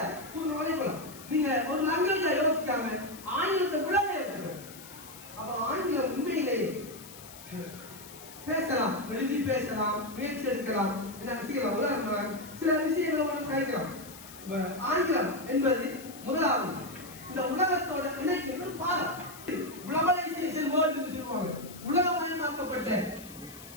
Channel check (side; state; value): left; noise; hiss, 17 dB below the sound